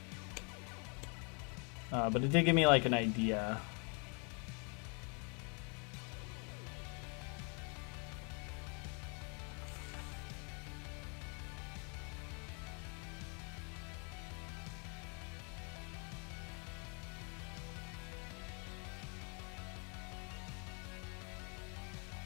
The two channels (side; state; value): right; quieter; 36.0 dB